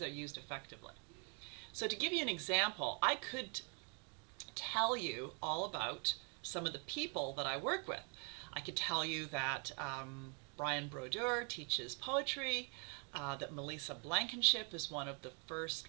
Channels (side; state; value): left; quieter; 37.6 dB